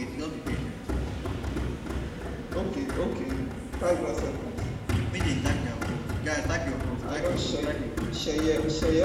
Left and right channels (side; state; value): both; identical; correlation 1.00